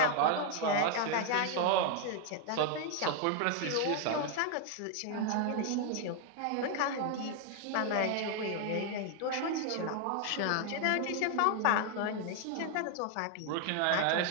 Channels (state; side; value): different; both; correlation 0.00